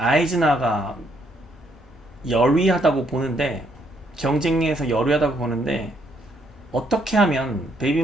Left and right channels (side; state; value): both; normal; correlation 0.71